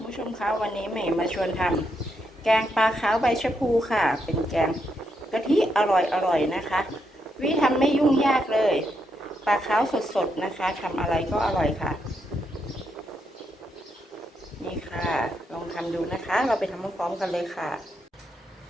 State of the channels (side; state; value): both; normal; correlation 0.80